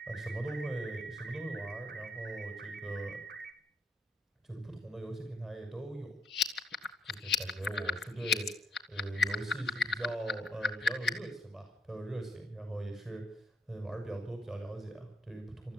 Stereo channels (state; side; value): normal; both; correlation 0.75